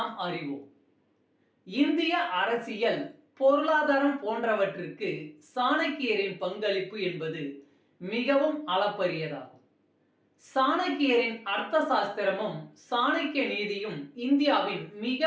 அறிவோம். இந்திய அரசியல், பொருளாதாரம் போன்றவற்றிற்கு சாணக்கியரின் பங்களிப்பு என்பது மிகவும் அளப்பரியதாகும். சாணக்கியரின் அர்த்த சாஸ்திரமும் சாணக்கிய நீதியும் இந்தியாவின்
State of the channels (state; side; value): identical; both; correlation 1.00